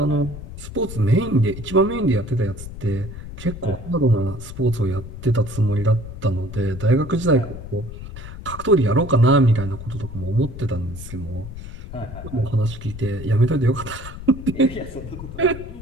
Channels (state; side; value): noise; left; rumble, 11 dB below the sound